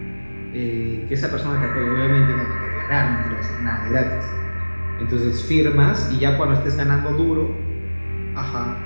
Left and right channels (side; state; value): both; inverted; correlation -1.00